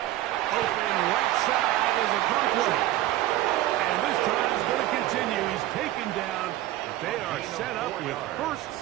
Open right side is a Conklin. And this drive is going to continue. He's taken down, but they are set up with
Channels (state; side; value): quieter; left; 15.0 dB